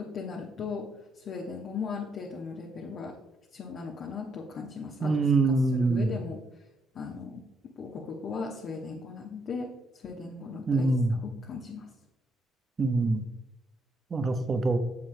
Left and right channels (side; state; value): both; normal; correlation 0.75